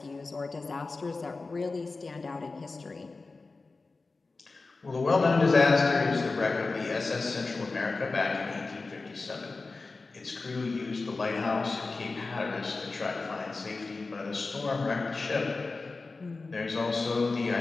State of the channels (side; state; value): right; quieter; 3.8 dB